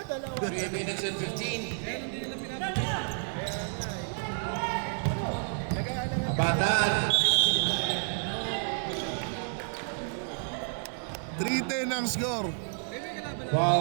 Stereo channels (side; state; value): left; silent; 58 dB below the other